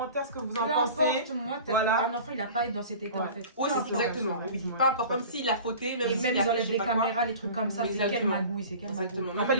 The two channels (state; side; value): inverted; both; correlation -0.40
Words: ce que vous en Peu pensez. importe, moi, Voilà. un enfant, il a pas à être dans cet état Ouais. en fait. Oui, Peu c'est importe. exactement. ouais, Oui, ouais. pas encore, même s'il a fauté, même Et s'il même a ils fait enlèvent je sais les pas quoi. caméras, les trucs comme ça, c'est quelle Exactement. magouille, c'est quelle magouille. Exactement. En fait,